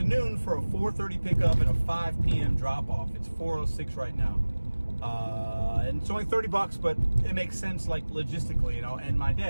for a 4:30 pickup and a 5 p.m. drop off. It's 4:06 right now, and it's only $30, but it makes sense, like logistically, end my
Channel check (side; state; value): both; inverted; correlation -1.00